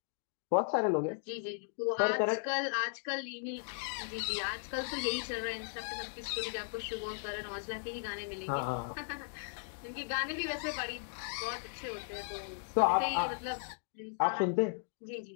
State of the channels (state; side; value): silent; right; digital silence